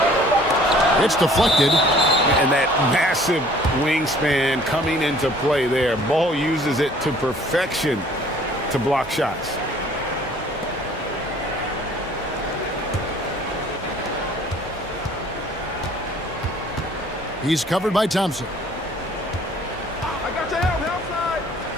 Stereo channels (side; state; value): both; normal; correlation 0.54